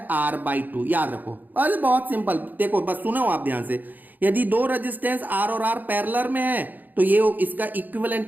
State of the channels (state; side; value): late; left; 0.085 ms